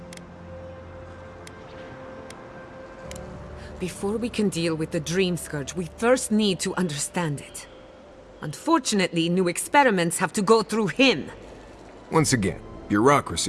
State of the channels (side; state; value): both; identical; correlation 1.00